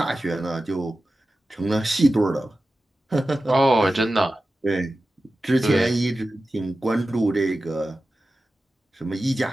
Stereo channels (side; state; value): both; normal; correlation 0.94